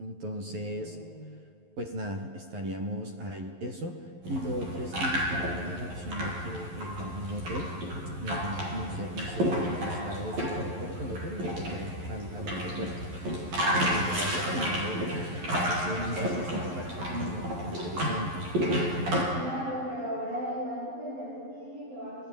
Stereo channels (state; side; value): late; left; 11 ms